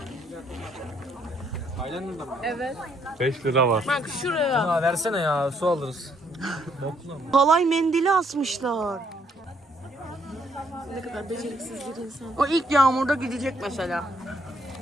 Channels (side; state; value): both; normal; correlation 0.69